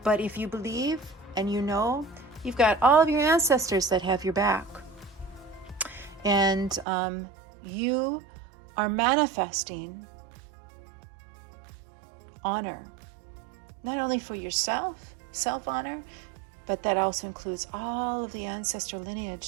But if you believe and you've got all of your ancestors that have your back, and you are manifesting honor, not only for yourself, self-honor, but that also includes all of the ancestor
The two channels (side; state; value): left; drops out; at 6.9 s